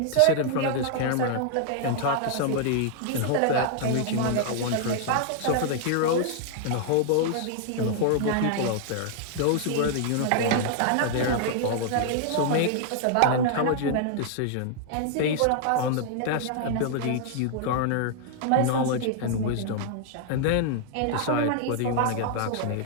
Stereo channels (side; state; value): both; different; correlation 0.00